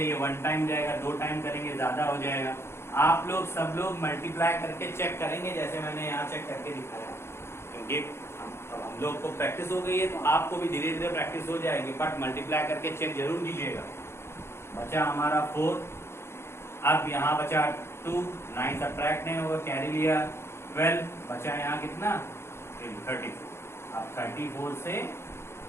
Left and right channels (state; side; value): late; right; 0.12 ms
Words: 1 टाइम जाएगा, 2 टाइम करेंगे ज्यादा हो जाएगा। आप लोग सब लोग मल्टीप्लाई करके चेक करेंगे जैसे मैंने यहाँ चेक करके दिखाया, क्योंकि हम लोग को प्रैक्टिस हो गई है तो आपको भी धीरे धीरे प्रैक्टिस हो जाएगी। बट मल्टीप्लाई करके चेक जरूर कीजिएगा। बचा हमारा 4, अब यहाँ बचा 2, 9 सबट्रैक्ट नहीं होगा, कैरी लिया 12, बचा यहाँ कितना 34। अब 34 से